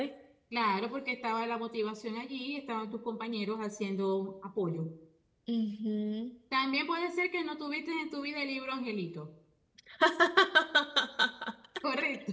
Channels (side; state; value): both; identical; correlation 1.00